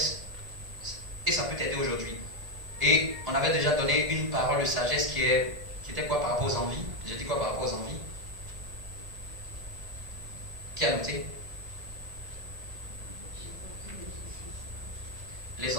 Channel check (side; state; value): left; late; 1.7 ms